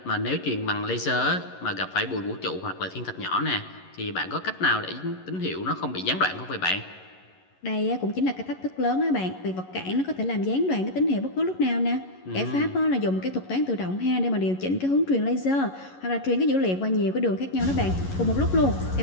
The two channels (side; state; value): right; late; 11 ms